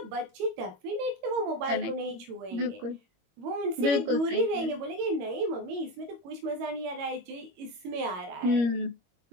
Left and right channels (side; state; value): left; late; 22 ms